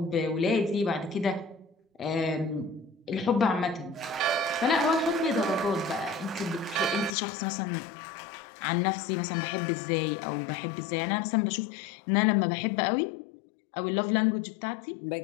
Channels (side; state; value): right; drops out; at 7.2 s